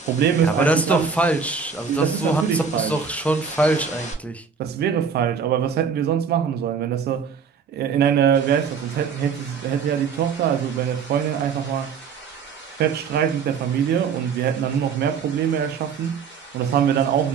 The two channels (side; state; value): left; quieter; 6.2 dB